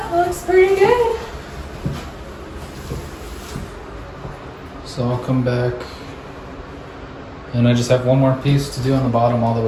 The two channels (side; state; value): both; identical; correlation 1.00